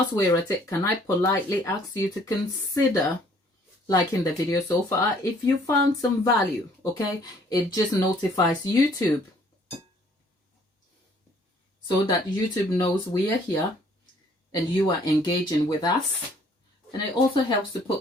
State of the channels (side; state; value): both; normal; correlation 0.60